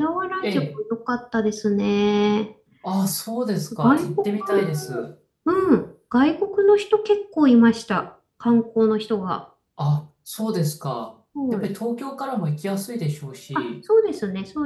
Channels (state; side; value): identical; both; correlation 1.00